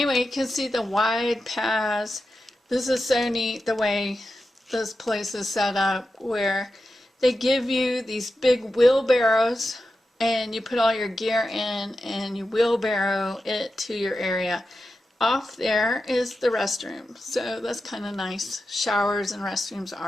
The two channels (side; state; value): both; normal; correlation 0.91